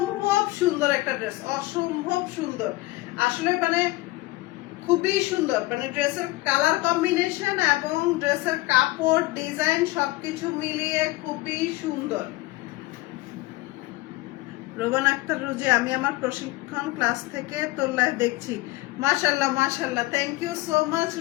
সুন্দর একটা ড্রেস, অসম্ভব সুন্দর আসলে, মানে খুবই সুন্দর, মানে ড্রেসের কালার কম্বিনেশন এবং ড্রেসের কাপড় ডিজাইন সবকিছু মিলিয়ে খুবই সুন্দর। রোবান আক্তার রুজি, আমি আমার প্রশিক্ষণ ক্লাস থেকে তোর লাইভ দেখছি। মাশাআল্লাহ মাশাআল্লাহ, thank you so much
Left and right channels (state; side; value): quieter; right; 20.0 dB